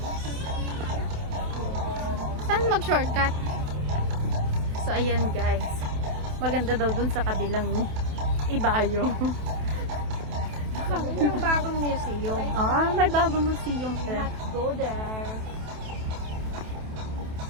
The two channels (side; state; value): left; late; 28 ms